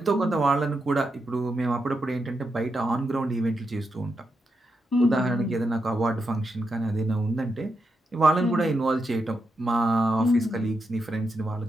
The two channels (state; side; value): normal; both; correlation 0.85